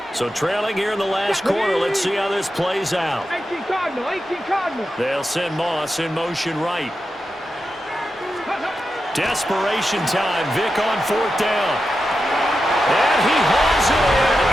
So trailing here in the last quarter. Let's see how this plays out. 18 Cardinal, 18 Cardinal. They'll send Moss in motion right. Desperation time. Vick on 4th down. And he hauls it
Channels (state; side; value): normal; both; correlation 0.90